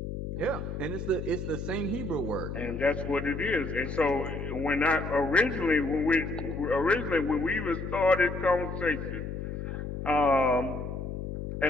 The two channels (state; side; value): noise; left; hum, 6 dB below the sound